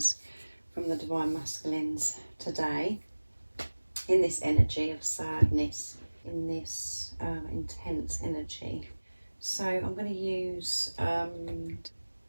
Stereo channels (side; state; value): both; inverted; correlation -1.00